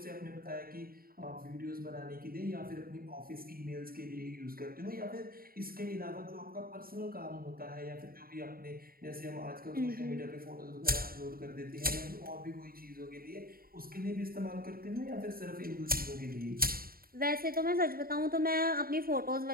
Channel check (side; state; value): left; late; 0.43 ms